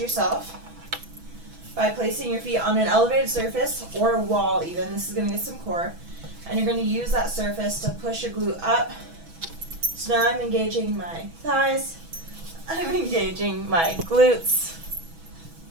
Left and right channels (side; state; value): left; late; 6.1 ms